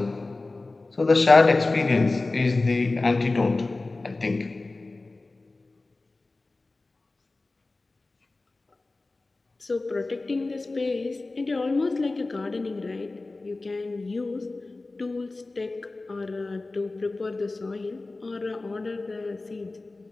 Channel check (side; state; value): right; quieter; 3.3 dB